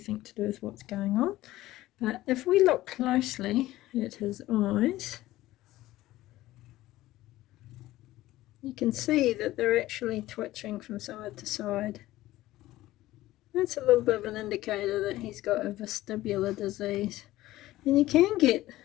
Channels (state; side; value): quieter; right; 16.3 dB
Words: to do with what's going on, but if we look closely at his eyes, you can see that they're actually twitching from side to side. That's a little bit of an indicator that he's got a vestibular disease. And you can get